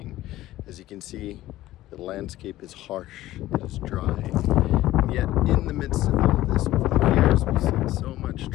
As you can see, the landscape is harsh, it is dry, and yet in the midst of all of this, over the years, we've seen so much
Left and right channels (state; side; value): quieter; right; 15.4 dB